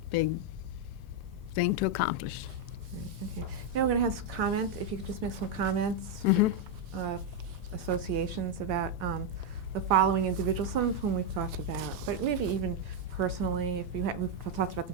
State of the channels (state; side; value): normal; both; correlation 0.01